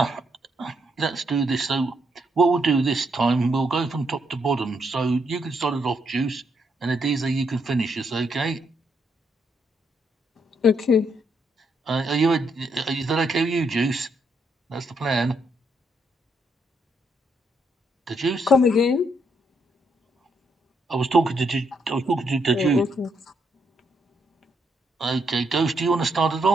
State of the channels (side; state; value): both; normal; correlation 0.76